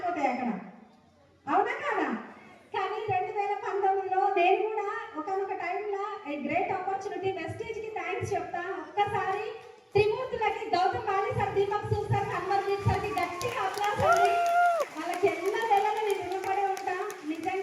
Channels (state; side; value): identical; both; correlation 1.00